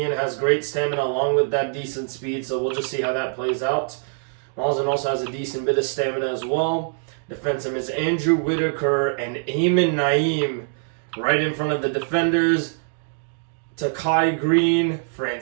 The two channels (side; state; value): left; silent; digital silence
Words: has great stamina along with that decent speed, so we'll just see how that plays out. Mazen also has a decent bit of stamina as well. Defensive is Andrew Whitaker and Eamon Naeem right in front of the defenders. Takai Green,